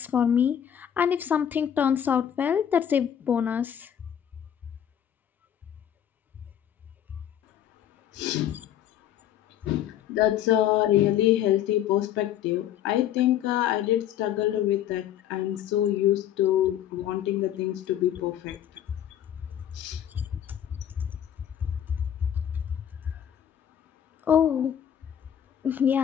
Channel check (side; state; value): right; quieter; 10.1 dB